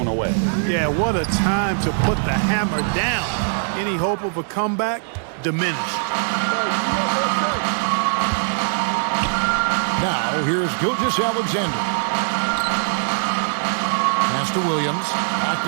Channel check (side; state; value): left; silent; digital silence